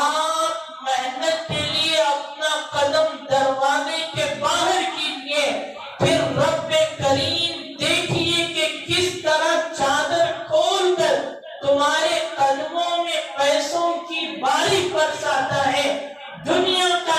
محنت کے لیے اپنا قدم دروازے کے باہر کیجیے، پھر رب کریم دیکھیے کہ کس طرح چادر کھول کر تمہارے قدموں میں پیسوں کی بارش برساتا ہے۔ دنیا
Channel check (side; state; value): both; identical; correlation 1.00